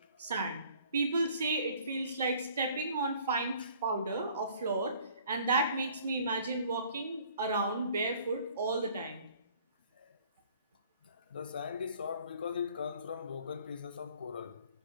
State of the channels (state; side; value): inverted; both; correlation -0.55